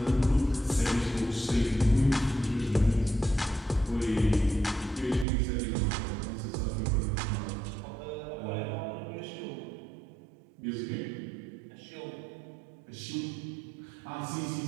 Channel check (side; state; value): left; drops out; at 5.2 s